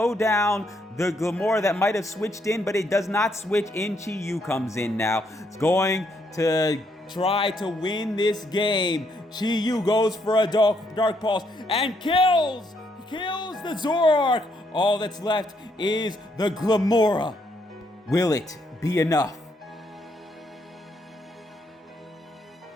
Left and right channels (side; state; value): both; normal; correlation 0.74